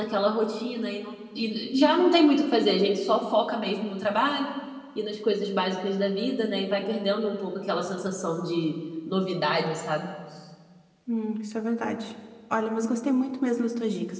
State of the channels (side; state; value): both; identical; correlation 1.00